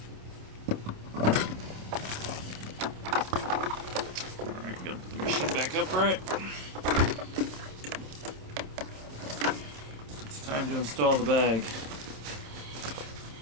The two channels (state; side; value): late; left; 27 ms